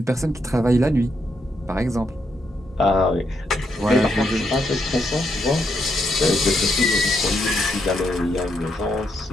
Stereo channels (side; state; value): both; normal; correlation 0.79